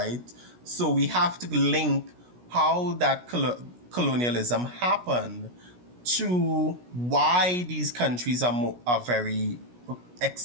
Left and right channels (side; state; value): left; late; 17 ms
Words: So we have to link how that colonialism happened to why these countries are very